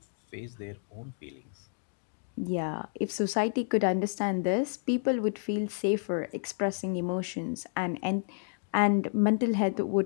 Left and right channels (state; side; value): silent; right; digital silence